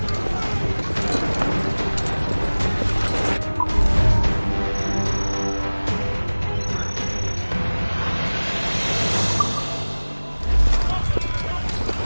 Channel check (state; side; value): inverted; both; correlation -1.00